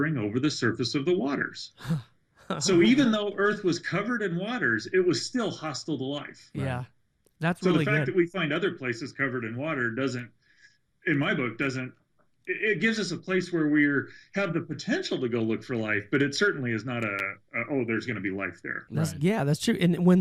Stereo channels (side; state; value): both; identical; correlation 1.00